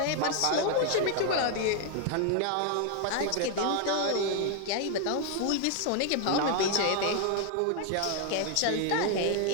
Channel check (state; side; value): different; both; correlation 0.00